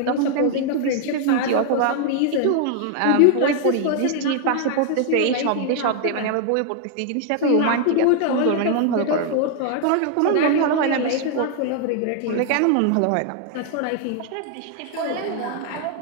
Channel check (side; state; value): both; different; correlation 0.00